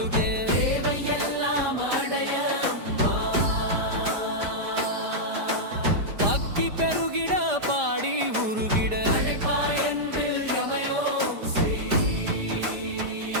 தேவையெல்லாம் அடைய பக்தி பெருகிட பாடி உருகிட அடைப்பாயன்பில் யமயோம் ஸ்ரீ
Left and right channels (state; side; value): late; left; 5.0 ms